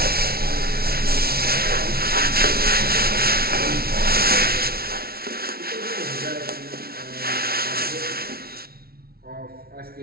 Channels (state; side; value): late; left; 0.44 ms